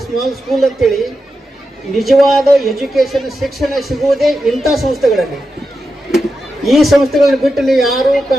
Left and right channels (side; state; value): both; normal; correlation 0.89